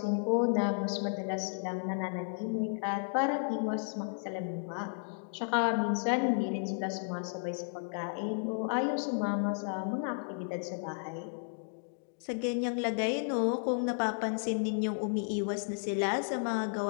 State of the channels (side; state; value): right; silent; digital silence